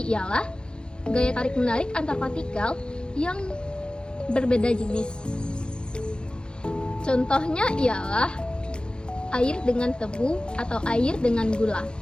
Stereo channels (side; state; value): right; late; 0.050 ms